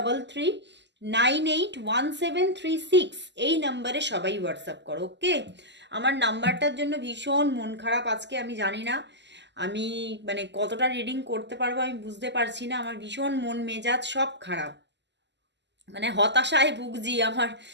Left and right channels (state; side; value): late; left; 0.51 ms